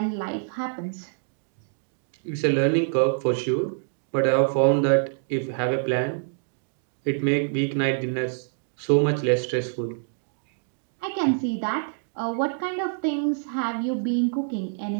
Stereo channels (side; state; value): left; silent; digital silence